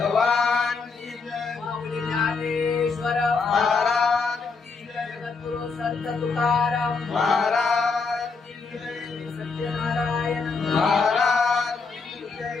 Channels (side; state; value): right; quieter; 4.6 dB